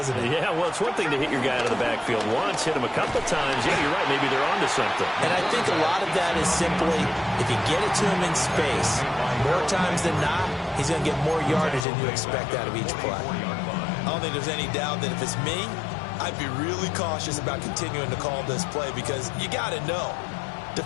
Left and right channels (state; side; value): drops out; right; at 11.9 s